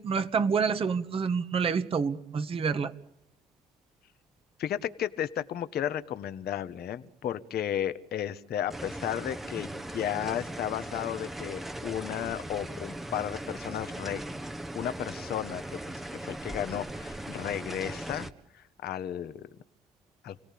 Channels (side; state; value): both; normal; correlation 0.47